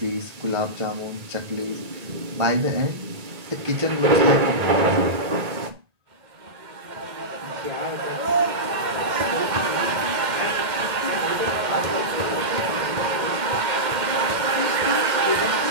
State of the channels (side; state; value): left; late; 1.8 ms